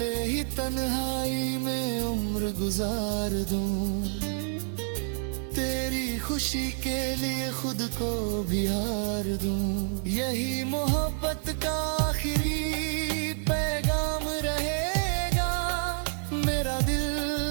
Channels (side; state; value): left; silent; 57 dB below the other